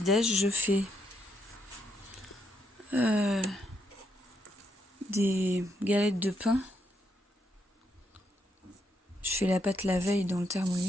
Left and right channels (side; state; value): both; normal; correlation 0.78